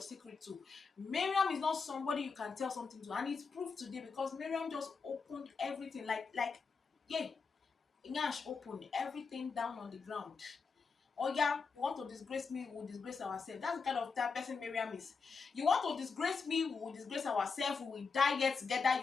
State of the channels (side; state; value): right; quieter; 5.0 dB